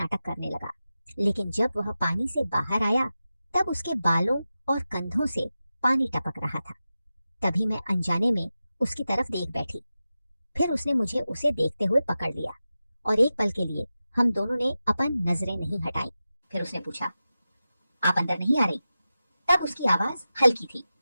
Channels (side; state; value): both; inverted; correlation -0.93